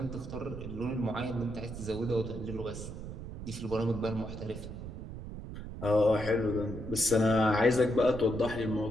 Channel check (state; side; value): noise; right; rumble, 9 dB below the sound